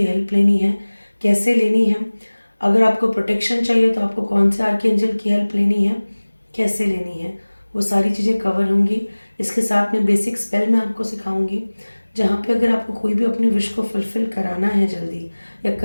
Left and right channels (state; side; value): inverted; both; correlation -1.00